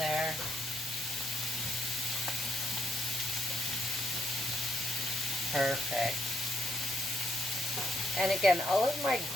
Perfect. And again, all of my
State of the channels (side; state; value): both; normal; correlation 0.77